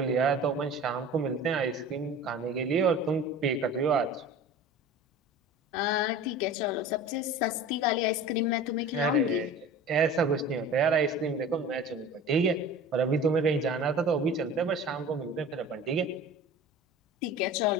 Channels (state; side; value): normal; both; correlation 0.39